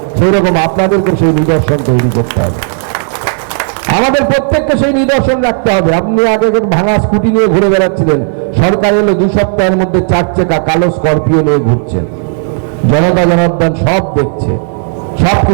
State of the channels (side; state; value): left; silent; digital silence